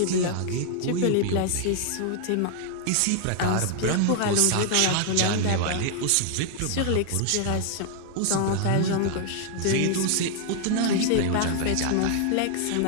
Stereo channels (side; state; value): both; different; correlation 0.00